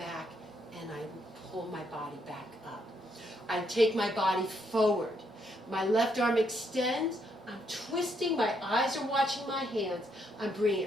and I pull my body back up. I take my body forward. My left arm extends. I'm twisting. My eyes are watching my hands. I'm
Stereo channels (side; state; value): both; normal; correlation 0.75